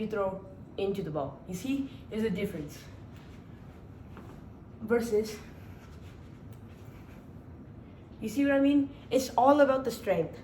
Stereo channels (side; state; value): both; identical; correlation 1.00